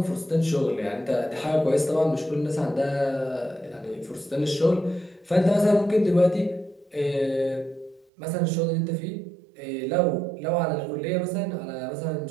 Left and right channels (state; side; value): drops out; left; at 8.1 s